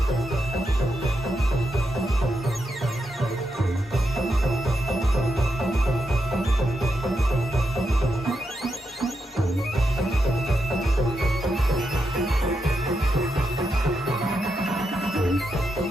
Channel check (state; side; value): normal; both; correlation 0.84